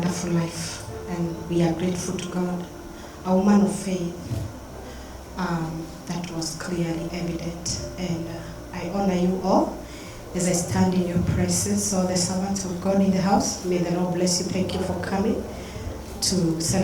life, and we are grateful to God. A woman of faith, that was clearly evident, and I honor you all as I stand in your presence. All the servants of God in the house, may the Lord bless you. Thank you for coming to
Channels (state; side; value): identical; both; correlation 1.00